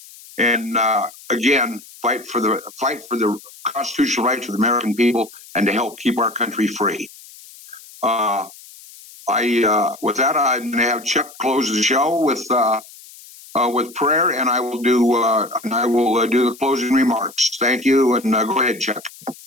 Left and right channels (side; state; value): left; noise; hiss, 20 dB below the sound